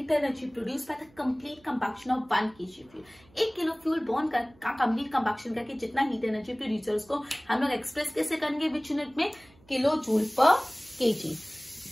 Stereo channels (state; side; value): noise; right; hum, 28 dB below the sound